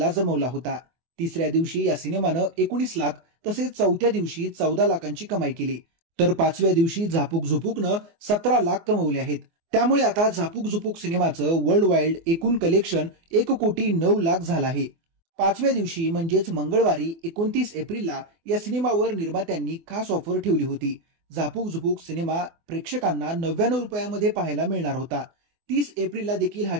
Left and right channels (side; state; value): left; late; 24 ms